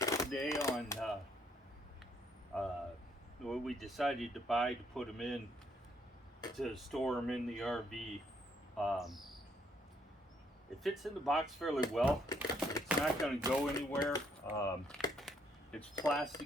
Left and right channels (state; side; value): normal; both; correlation 0.70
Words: on what we decided to buy to put them in to store them in the RV. It fits in the box fairly well. It's not going to go anywhere. It's